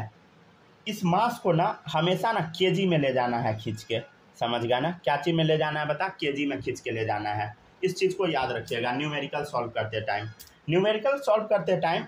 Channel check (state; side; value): identical; both; correlation 1.00